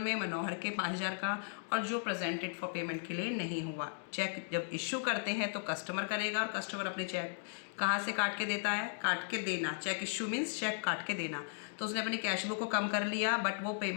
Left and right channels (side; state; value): right; silent; digital silence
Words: मनोहर के 5,000 का, और जो प्रेजेंटेड फॉर पेमेंट के लिए नहीं हुआ। चेक जब इशू करते हैं तो कस्टमर करेगा, और कस्टमर अपने चेक कहाँ से काट के देता है, काट के देना। चेक इशू मीन्स चेक काट के देना। तो उसने अपनी कैश बुक को कम कर लिया, बट वो